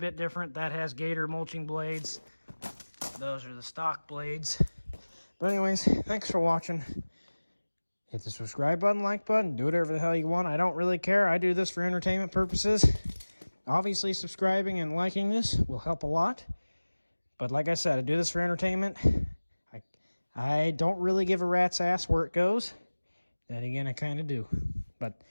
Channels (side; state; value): both; inverted; correlation -1.00